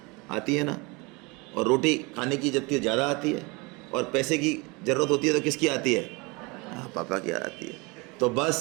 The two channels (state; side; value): quieter; left; 26.8 dB